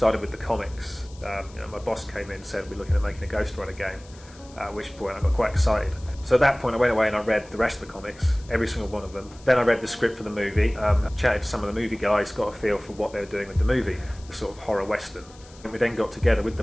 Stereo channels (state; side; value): noise; left; hiss, 24 dB below the sound